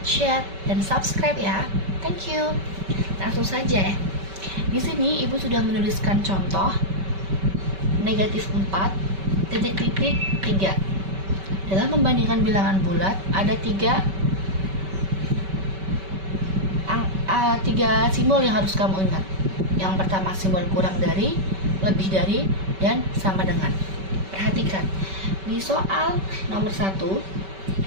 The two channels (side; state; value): left; late; 5.2 ms